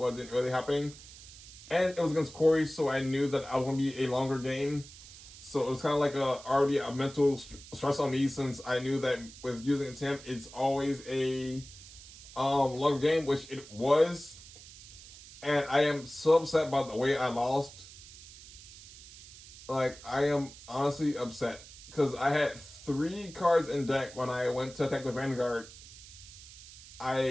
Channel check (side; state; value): right; noise; hiss, 18 dB below the sound